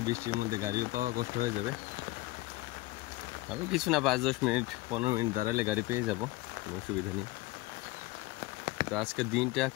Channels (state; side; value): quieter; right; 19.1 dB